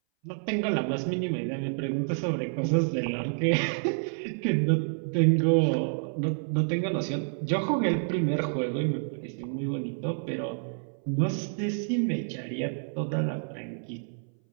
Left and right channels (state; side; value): silent; left; 59 dB below the other